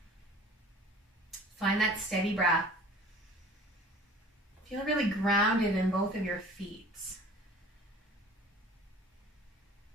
Find that steady breath. Feel really grounded in both of your feet.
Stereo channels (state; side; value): normal; both; correlation 0.45